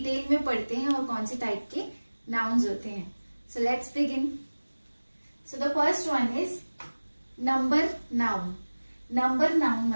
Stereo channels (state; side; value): inverted; both; correlation -1.00